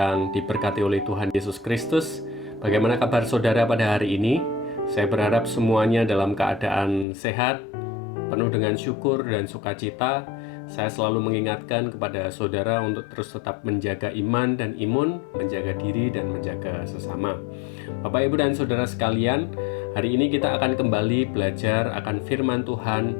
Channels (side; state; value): right; drops out; at 7.1 s